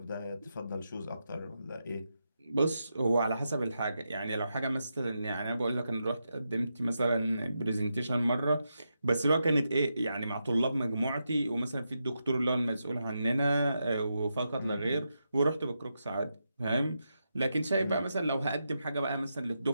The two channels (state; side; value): inverted; both; correlation -0.86